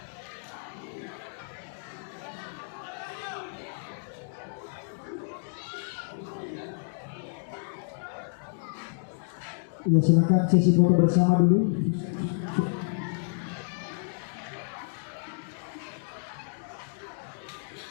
Ya, silakan sesi foto bersama dulu.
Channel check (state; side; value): silent; right; digital silence